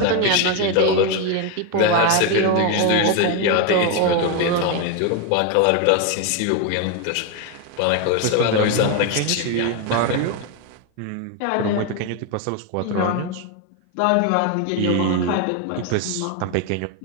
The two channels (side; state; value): both; different; correlation 0.02